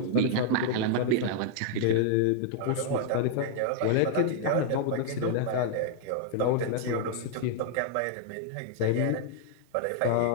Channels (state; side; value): different; both; correlation -0.01